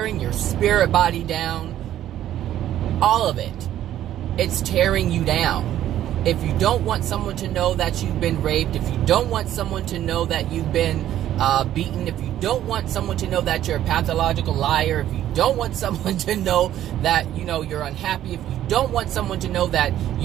your spirit body down. All of it. It's tearing you down. If you don't want someone to know that you've been raped, if you don't want someone to know that you've been beaten, if you don't want someone to know that you're a pathological liar, if you don't want someone to know that, you're unhappy, if you don't want someone to know that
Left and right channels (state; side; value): quieter; left; 12.1 dB